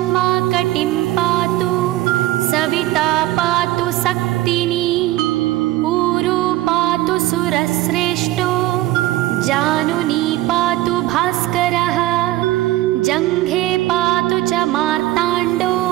कटिं पातु सविता पातु सक्तिनी ऊरू पातु सुरश्रेष्ठो जानुनी पातु भास्करः जङ्घे पातु च मार्ताण्डो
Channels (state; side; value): quieter; left; 16.6 dB